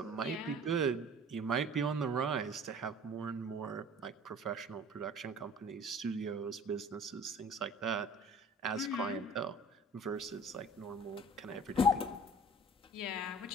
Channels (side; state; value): both; normal; correlation 0.46